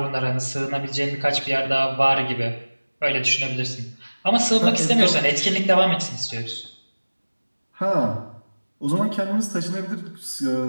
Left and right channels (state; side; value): inverted; both; correlation -1.00